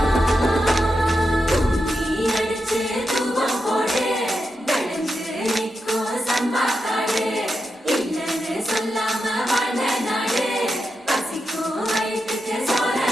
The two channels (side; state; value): both; normal; correlation 0.87